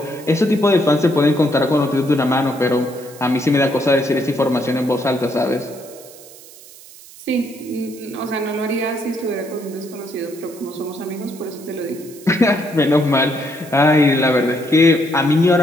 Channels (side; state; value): right; noise; hiss, 20 dB below the sound